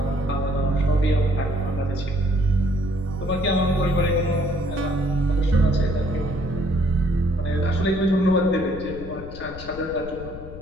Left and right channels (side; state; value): left; noise; rumble, 13 dB below the sound